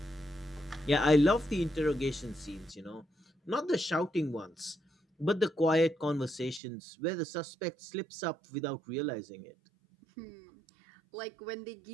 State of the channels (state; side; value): drops out; left; at 6.6 s